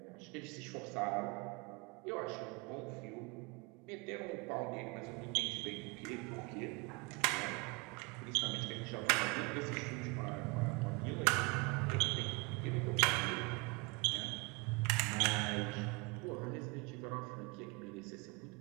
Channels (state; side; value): quieter; left; 28.3 dB